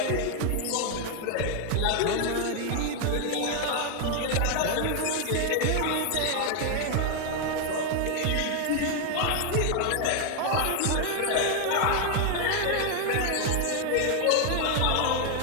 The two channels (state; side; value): different; both; correlation 0.00